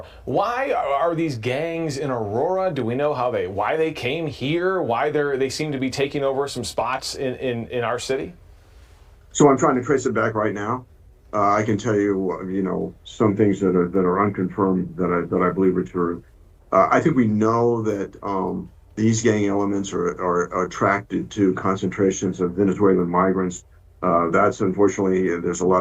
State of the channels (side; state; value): both; identical; correlation 1.00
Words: Why are these gangs in Aurora? Do we know why they came here? Why they seem to be taking over some spots in our city? So I'm trying to trace it back right now. I can tell you, some things that are unconfirmed that I believe are true. I think we know that these gang elements are attracted to concentrations of Venezuelan migrants. That's unfortunately, there's a